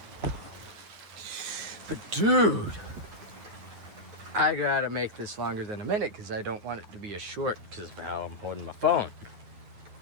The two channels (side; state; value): left; late; 9.4 ms